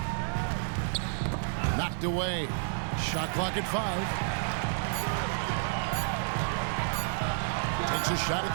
Knocked away. Shot clock at 5. Takes a shot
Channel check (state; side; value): silent; left; 58 dB below the other